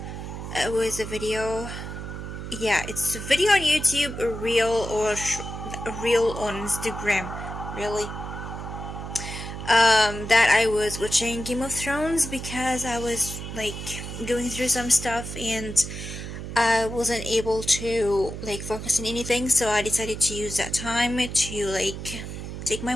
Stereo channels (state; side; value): noise; right; hum, 8 dB below the sound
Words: It was a video. Yeah, it's a video on YouTube, a reel or a reel on Instagram. Really. That I was watching Game of Thrones because I was going through some stuff and I wasn't able to focus on anything, so I decided to use that time to take my